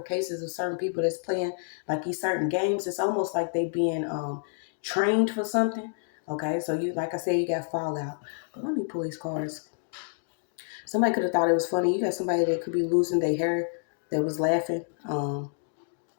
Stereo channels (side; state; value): right; silent; digital silence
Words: cases of certain people that's playing like these certain games. It's almost like they being trained for something. Okay, so you, like I said, you got Fallout. But let me pull these cards. Somebody could have thought it was funny. You got somebody that could be losing their hair that was laughing.